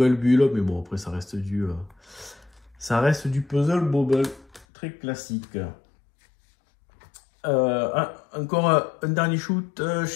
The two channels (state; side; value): drops out; right; at 4.7 s